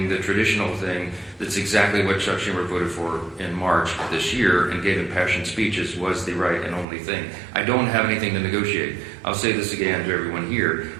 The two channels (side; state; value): left; drops out; at 6.9 s